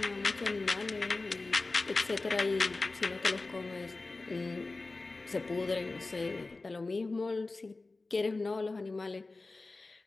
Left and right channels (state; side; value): quieter; right; 3.4 dB